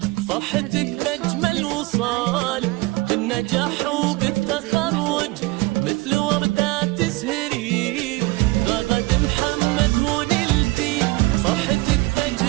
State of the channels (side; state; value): left; quieter; 22.3 dB